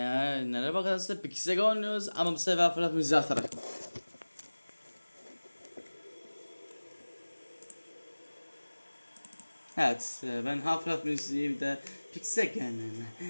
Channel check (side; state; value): both; inverted; correlation -1.00